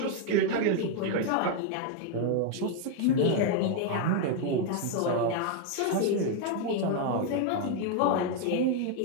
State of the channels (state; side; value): different; both; correlation 0.00